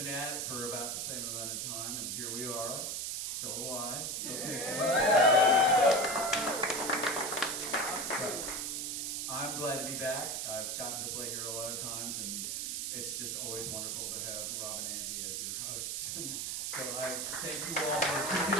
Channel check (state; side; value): noise; right; hiss, 2 dB below the sound